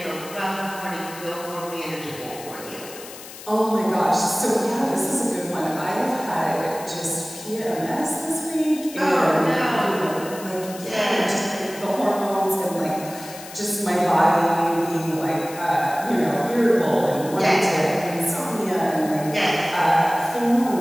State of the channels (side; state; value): left; noise; hiss, 15 dB below the sound